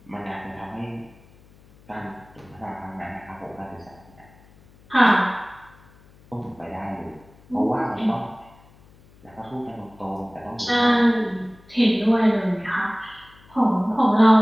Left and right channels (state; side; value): noise; left; hum, 27 dB below the sound